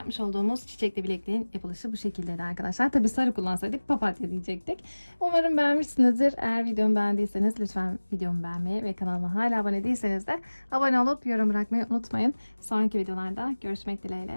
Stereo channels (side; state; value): both; inverted; correlation -1.00